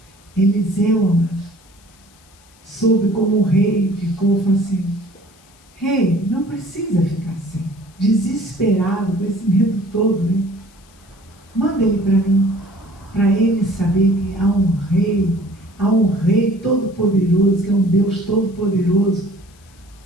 Eliseu soube como o rei ficou, falou assim: rei, não precisa ficar assim, desesperado com esse medo todo, né? Manda ele para mim, para ele saber que há um rei todo-poderoso, que é um Deus todo-poderoso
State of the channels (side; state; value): left; noise; hiss, 29 dB below the sound